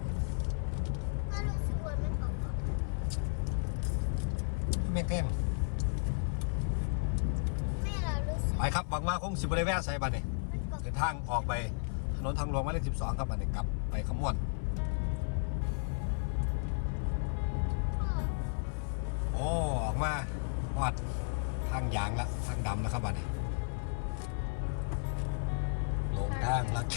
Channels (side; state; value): right; silent; 55 dB below the other